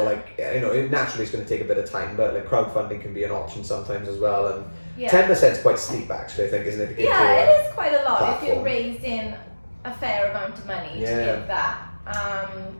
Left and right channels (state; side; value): inverted; both; correlation -1.00